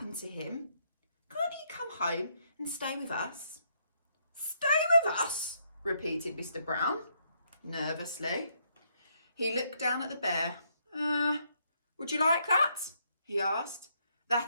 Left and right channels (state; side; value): inverted; both; correlation -0.73